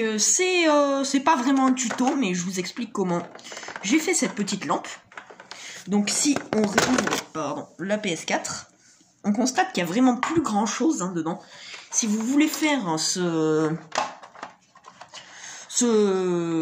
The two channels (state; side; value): identical; both; correlation 1.00